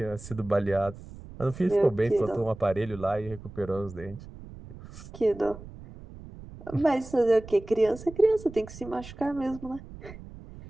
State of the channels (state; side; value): noise; right; rumble, 16 dB below the sound